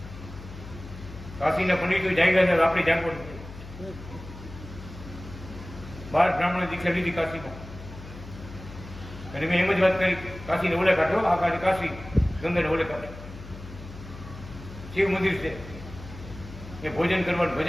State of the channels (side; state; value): left; noise; hum, 14 dB below the sound